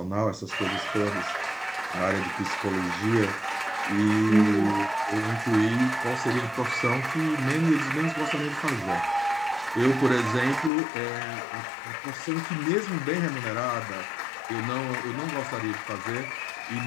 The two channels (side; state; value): right; drops out; at 10.7 s